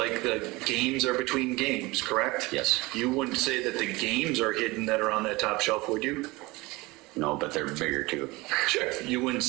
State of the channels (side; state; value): left; quieter; 22.4 dB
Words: the games are between games, correct? Yes. You wouldn't say that the games are hidden that are on that top shelf, would you? No, but they're bigger too. Sure. You wouldn't